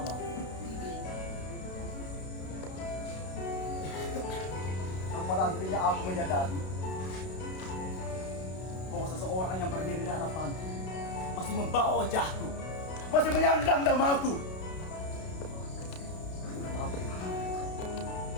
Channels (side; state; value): right; late; 32 ms